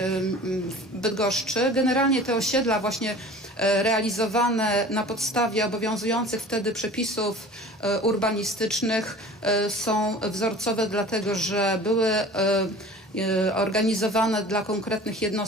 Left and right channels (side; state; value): both; normal; correlation 0.42